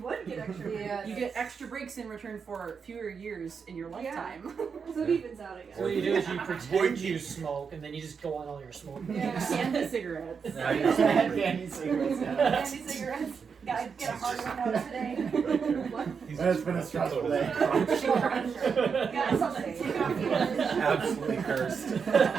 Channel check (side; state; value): left; quieter; 6.0 dB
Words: get extra breaks. You get extra breaks in return for fewer years in your lifetime. So it evens out again. So what you do is you pretend you smoke, and then you just go on all your smoking. Yeah. Candy cigarettes. Candy cigarettes. Candy cigarettes. Gotta get a hard one out today. What? It's been a stressful day. Got something to take off the edge. Absolutely cursed.